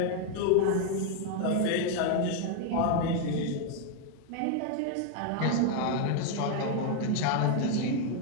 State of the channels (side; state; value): both; different; correlation 0.00